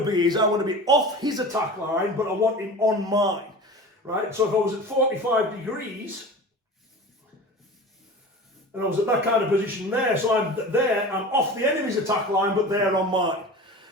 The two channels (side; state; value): both; normal; correlation 0.35